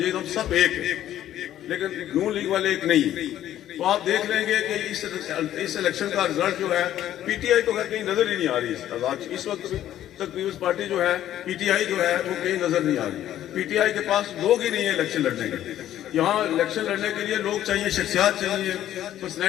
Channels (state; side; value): quieter; right; 12.1 dB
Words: ہم سب ایک ہیں, لیکن نون لیگ والے ایک نہیں. تو آپ دیکھ لیں گے کہ اس الیکشن کا رزلٹ جو ہے پی ٹی آئی تو کہیں نظر ہی نہیں آ رہی. اس وقت تک پیپلز پارٹی جو ہے پی ٹی آئی جو ہے وہ کہیں نظر نہیں آ رہی. پی ٹی آئی کے پاس لوگ ہی نہیں ہیں الیکشن لڑنے کے. یہاں الیکشن لڑنے کے لیے لوگ چاہیے, شخصیات چاہیے,